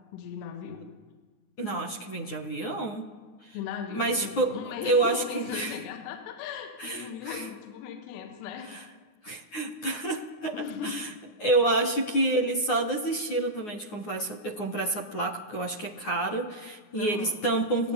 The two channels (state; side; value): late; right; 9.6 ms